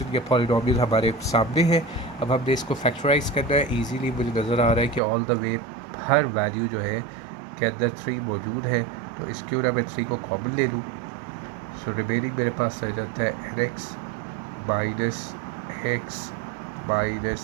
के पॉलिनोमियल हमारे सामने है। अब हमने इसको फैक्टराइज करना है। इजीली मुझे नज़र आ रहा है कि all the way her value जो है के अंदर 3 मौजूद है, तो इस क्यों ना मैं 3 को कॉमन ले लूँ। सो रिमेनिंग मेरे पास रह जाता है nx -x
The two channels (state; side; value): drops out; left; at 5.0 s